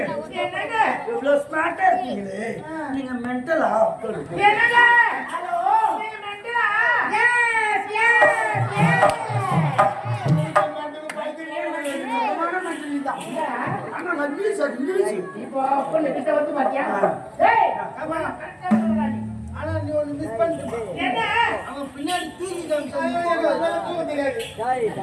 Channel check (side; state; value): both; identical; correlation 1.00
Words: என்னங்க இவ்வளவு ஸ்மார்ட்டா இருக்கீங்களே, நீங்க மென்டலா? என்னங்க ஹலோ நீங்க மெண்டலா? S S S. இப்போ பொண்ணு கிட்ட வந்து பாத்தியா? டேய் கமா கரெக்ட்டா சொல்றானே. ஆனா நீ ஒன்னு மிஸ் பண்ணிட்ட. என்ன அவன் பின்னாடி தூக்கி காமிச்சான். அதெல்லாம் தூக்க தெரியாது. டேய்